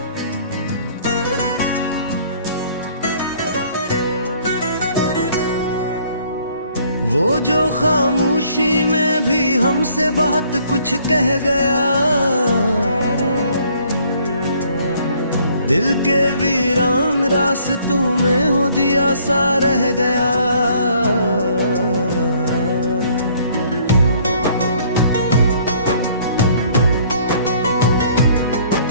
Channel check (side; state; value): both; inverted; correlation -0.60